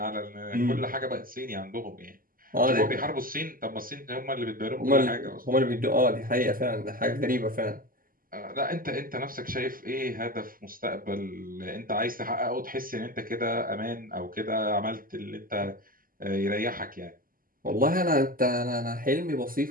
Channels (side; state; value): left; late; 0.41 ms